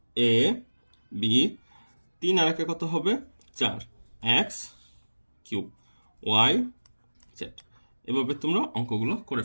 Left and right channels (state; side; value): inverted; both; correlation -1.00